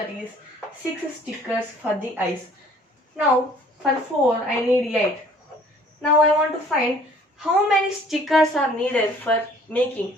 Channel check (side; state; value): both; normal; correlation 0.55